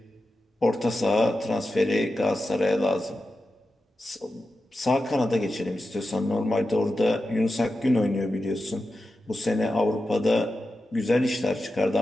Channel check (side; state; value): both; normal; correlation 0.91